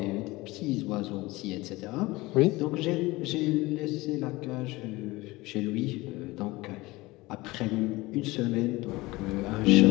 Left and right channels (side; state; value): right; quieter; 20.9 dB